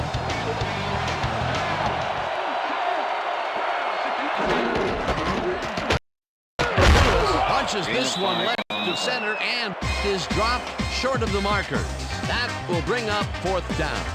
Punches this one left to center and is dropped short of the markers. That will bring up fourth down.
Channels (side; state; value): both; identical; correlation 1.00